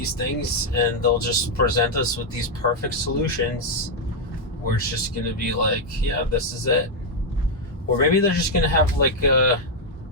things and they'll just present us with these perfect solutions where it's just going to be like, yeah, this is it. Or maybe they're just going to have like a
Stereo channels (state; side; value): normal; both; correlation -0.01